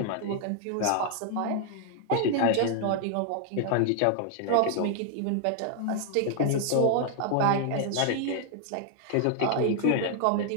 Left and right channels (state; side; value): different; both; correlation 0.00